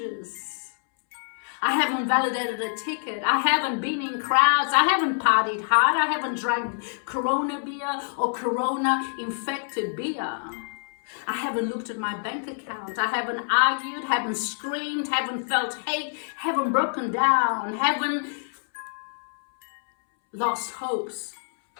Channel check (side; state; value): right; silent; 61 dB below the other